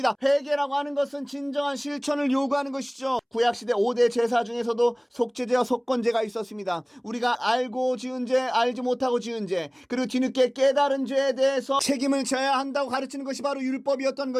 회개라고 하는 것은 진정한 실천을 요구하는 것이죠. 구약시대 5대 제사 중에서도 속죄제와 속건제가 있었습니다. 우리가 알고 지은 죄, 알지 못하고 지은 죄, 그리고 뒤늦게 깨달은 죄에 대해서 책임을 져야 한다고 가르치는 것이 바로 율법이었던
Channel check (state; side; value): identical; both; correlation 1.00